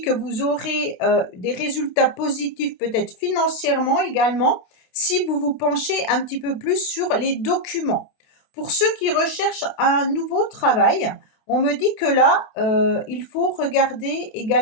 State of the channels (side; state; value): right; late; 28 ms